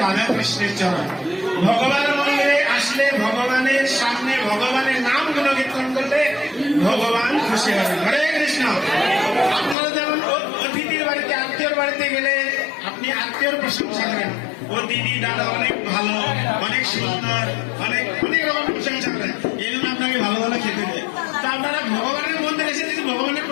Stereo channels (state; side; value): drops out; right; at 9.8 s